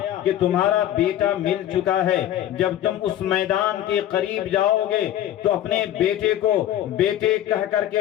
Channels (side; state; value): right; quieter; 12.0 dB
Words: کہ تمہارا بیٹا مل چکا ہے، جب تم اس میدان کے قریب جاؤ گے تو اپنے بیٹے کو بیٹے کہہ کر